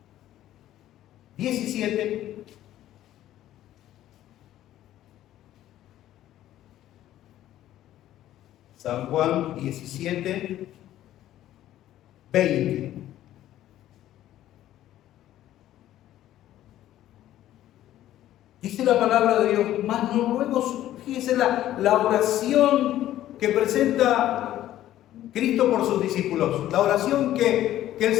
17. San Juan 17, 20. Dice la palabra de Dios, mas no ruego, fíjese la oración que presenta Cristo por sus discípulos, la oración que el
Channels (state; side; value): quieter; right; 13.1 dB